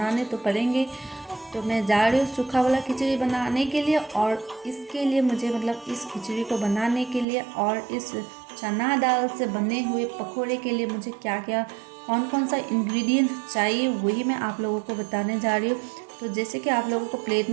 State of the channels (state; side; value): drops out; left; at 7.2 s